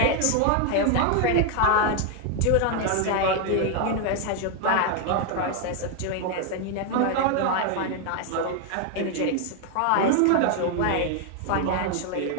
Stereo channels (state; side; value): different; both; correlation 0.01